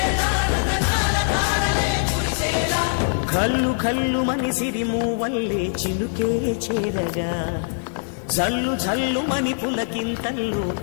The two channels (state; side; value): silent; right; 64 dB below the other